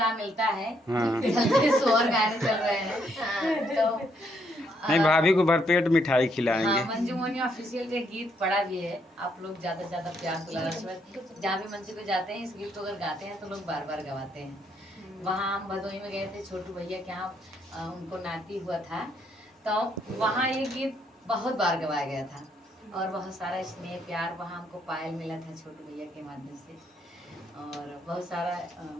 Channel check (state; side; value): normal; both; correlation 0.73